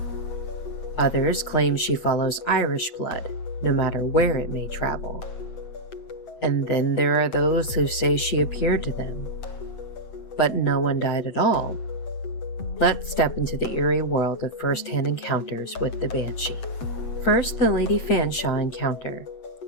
Others claim she follows Irish blood, no matter where it may travel. And then there are those who say she appeared to them, but no one died at all. Let's step into the eerie world of first-hand encounters with the Banshee. First, the Lady Fanshawe encounter,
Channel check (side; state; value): right; late; 7.8 ms